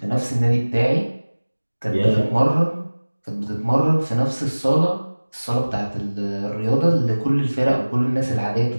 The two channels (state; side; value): inverted; both; correlation -1.00